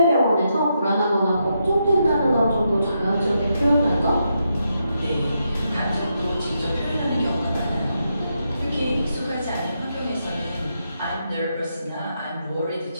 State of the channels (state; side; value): inverted; both; correlation -0.82